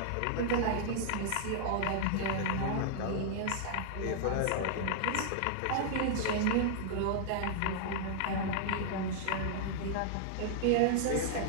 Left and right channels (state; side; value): different; both; correlation -0.01